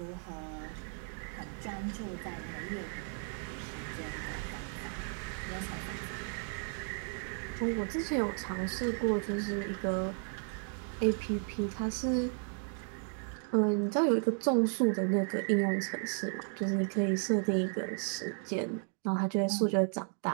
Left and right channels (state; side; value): silent; left; 55 dB below the other